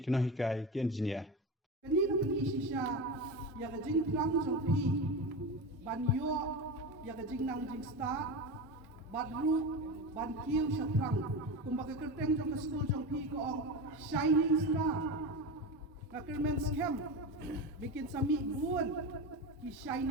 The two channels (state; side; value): normal; both; correlation 0.22